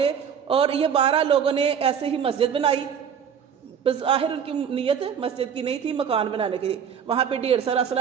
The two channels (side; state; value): left; quieter; 7.7 dB